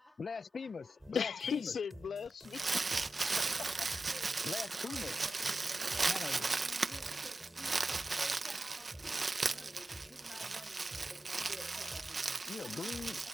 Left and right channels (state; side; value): normal; both; correlation 0.92